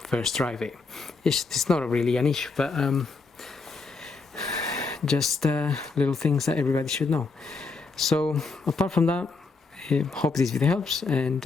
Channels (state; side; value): quieter; right; 4.1 dB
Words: first drive it. It's not really an issue, but just little things that everybody should know. So apart from that, I hope this video helps, and